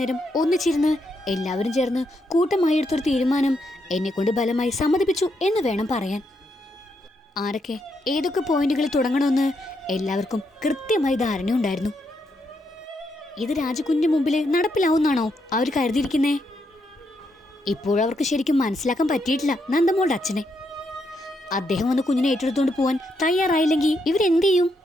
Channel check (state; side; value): normal; both; correlation 0.79